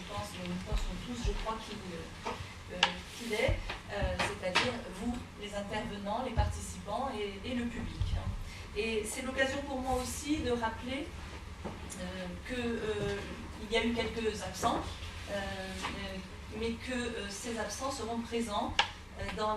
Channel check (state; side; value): identical; both; correlation 1.00